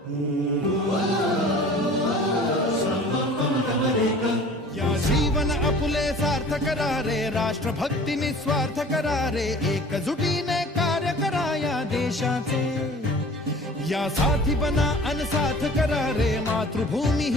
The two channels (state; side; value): normal; both; correlation 0.45